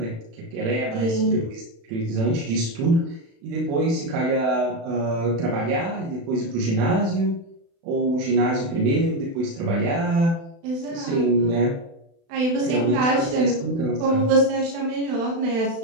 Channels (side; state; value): left; late; 36 ms